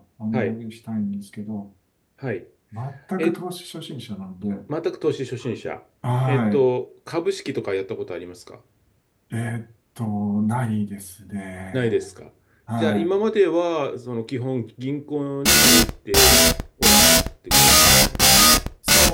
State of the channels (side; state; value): both; identical; correlation 1.00